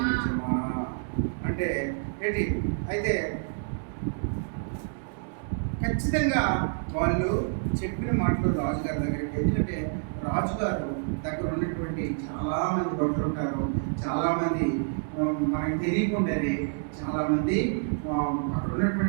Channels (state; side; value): silent; left; digital silence